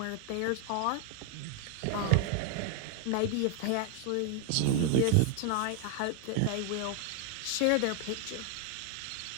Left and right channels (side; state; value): both; different; correlation 0.00